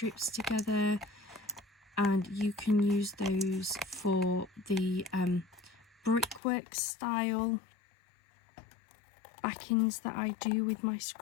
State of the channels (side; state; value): right; drops out; at 6.4 s